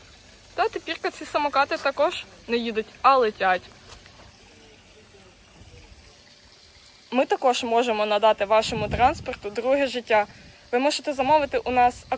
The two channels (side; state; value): both; identical; correlation 1.00